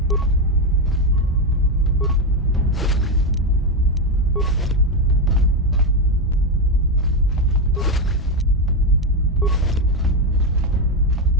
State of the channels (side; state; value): both; normal; correlation 0.09